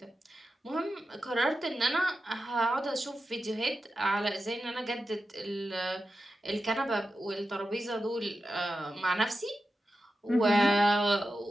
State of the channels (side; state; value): both; normal; correlation 0.91